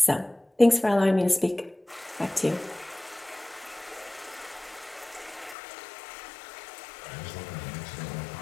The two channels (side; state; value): right; drops out; at 5.6 s